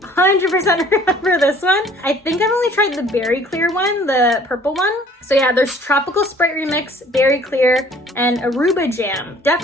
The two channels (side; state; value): both; normal; correlation 0.54